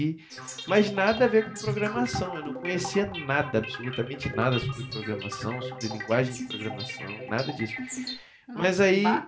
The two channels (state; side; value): identical; both; correlation 1.00